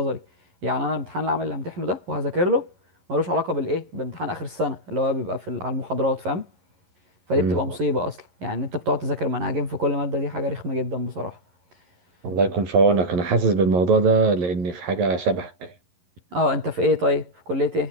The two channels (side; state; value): left; late; 11 ms